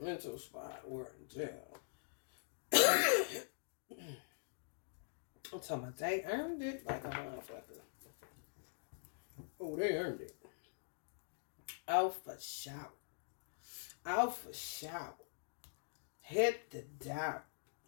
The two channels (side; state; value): right; silent; digital silence